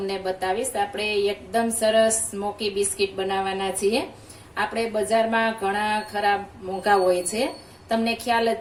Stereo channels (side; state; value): both; identical; correlation 1.00